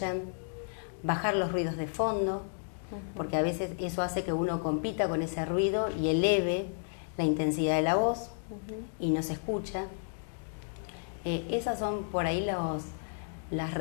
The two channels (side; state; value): right; silent; digital silence